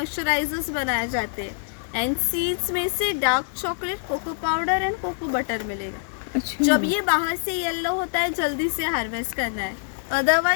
बनाए जाते हैं। एंड सीड्स में से dark chocolate, cocoa powder and cocoa butter मिलेगा। अच्छा जब ये बाहर से येलो होता है जल्दी से हार्वेस्ट करना है,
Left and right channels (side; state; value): right; silent; 62 dB below the other